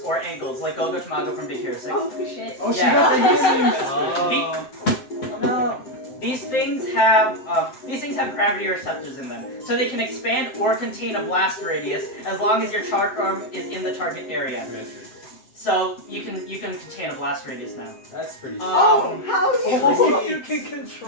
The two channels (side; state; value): right; late; 7.7 ms